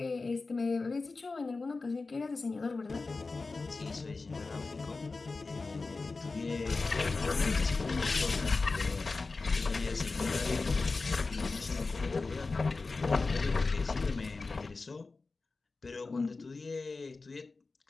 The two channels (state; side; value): quieter; right; 3.8 dB